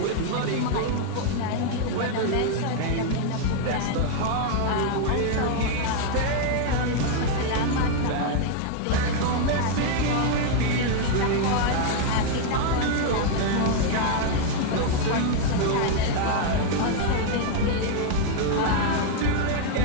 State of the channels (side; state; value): both; different; correlation 0.00